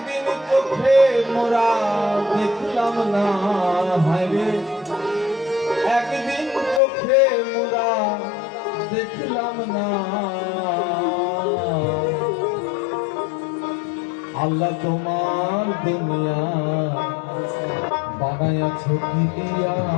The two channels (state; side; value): drops out; right; at 6.8 s